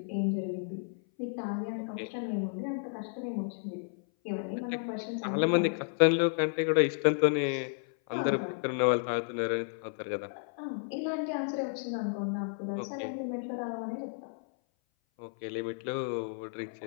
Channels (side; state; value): right; silent; 56 dB below the other